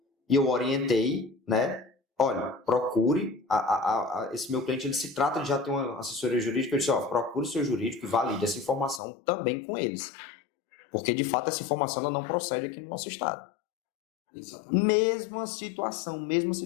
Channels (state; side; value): drops out; right; at 9.0 s